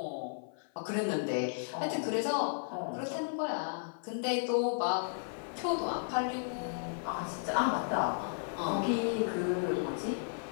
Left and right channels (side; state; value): right; silent; 55 dB below the other